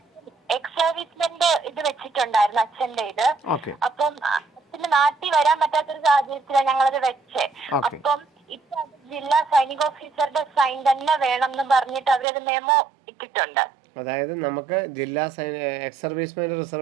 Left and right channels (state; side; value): drops out; left; at 12.2 s